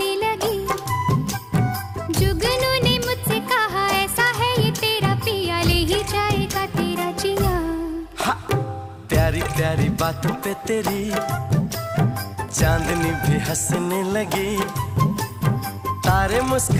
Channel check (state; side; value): identical; both; correlation 1.00